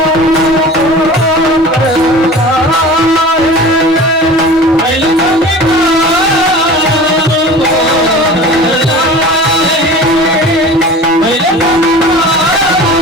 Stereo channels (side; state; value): both; normal; correlation 0.38